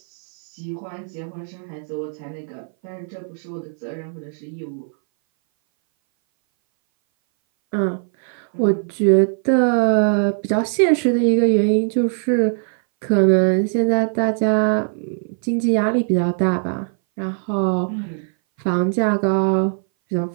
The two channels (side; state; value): left; silent; 60 dB below the other